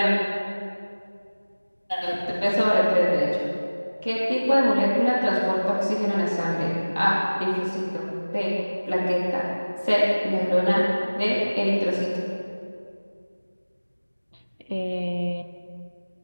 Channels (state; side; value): inverted; both; correlation -1.00